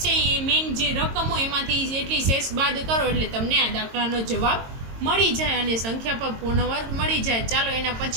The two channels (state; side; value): late; left; 22 ms